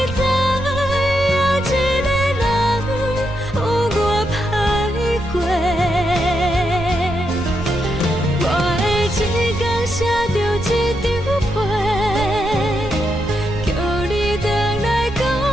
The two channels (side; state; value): right; noise; rumble, 11 dB below the sound